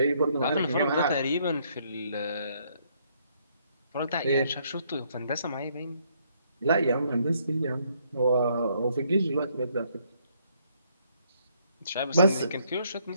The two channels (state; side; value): inverted; both; correlation -0.69